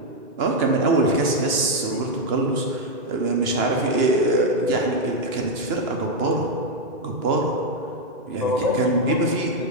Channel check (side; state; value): left; late; 2.9 ms